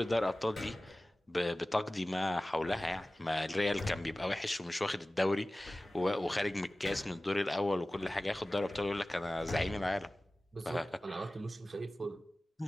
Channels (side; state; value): both; normal; correlation 0.97